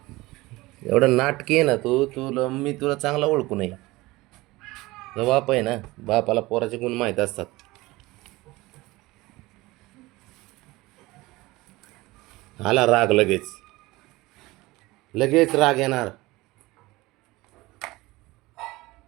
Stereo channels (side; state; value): left; quieter; 20.4 dB